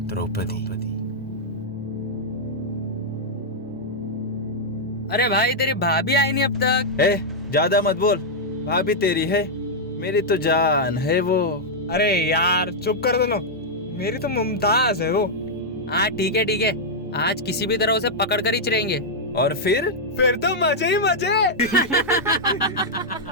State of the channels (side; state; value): both; normal; correlation -0.05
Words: द्रौपदी। अरे भाई तेरी भाभी आई नहीं अब तक। ज्यादा मत बोल, भाभी तेरी है, मेरी तो जान है वो। अरे यार चुप कर दो ना, मेरी तो मुमताज है वो। हाँ ठीक है, आज किसी भी तरह उसे पकड़ कर ही चलेंगे। और फिर तो मजे ही मजे।